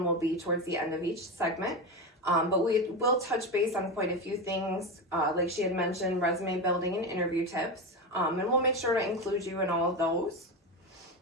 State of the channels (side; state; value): both; normal; correlation 0.18